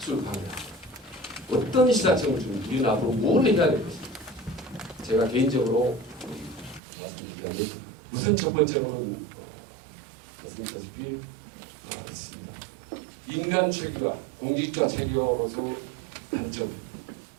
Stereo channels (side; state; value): left; drops out; at 6.8 s